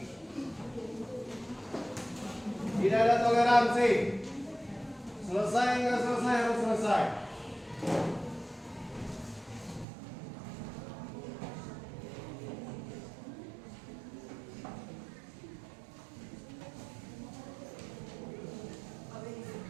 Tidak ada toleransi. Selesai nggak selesai harus selesai.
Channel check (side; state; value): left; drops out; at 9.9 s